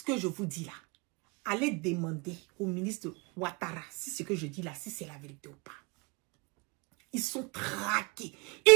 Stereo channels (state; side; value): quieter; left; 28.4 dB